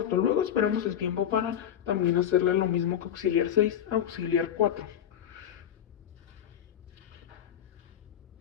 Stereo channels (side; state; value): right; quieter; 9.9 dB